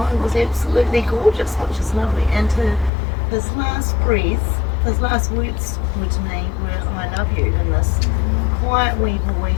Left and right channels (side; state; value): right; drops out; at 2.9 s